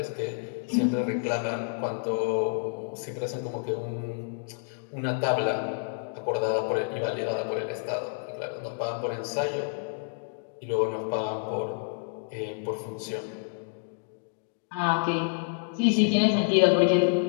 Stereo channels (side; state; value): right; silent; digital silence